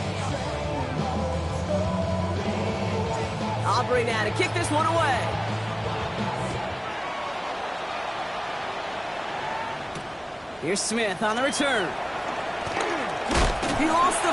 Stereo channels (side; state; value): both; identical; correlation 1.00